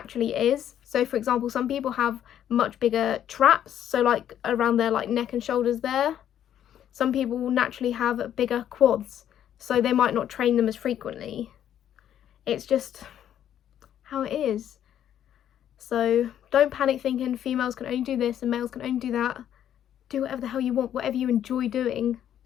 is. So for example, some people have much bigger traps, so like around their like neck and shoulders there. Some people will naturally have bigger quads, so they might not train them as frequently. It's just how it is. So don't panic thinking females can only do this and males can only do that. Do whatever the hell you want, whatever you enjoy doing,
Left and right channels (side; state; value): right; quieter; 10.4 dB